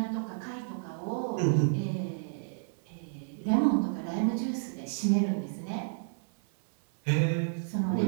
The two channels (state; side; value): silent; left; 57 dB below the other